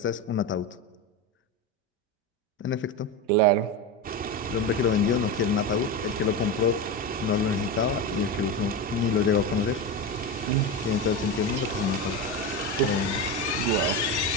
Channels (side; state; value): both; normal; correlation 0.19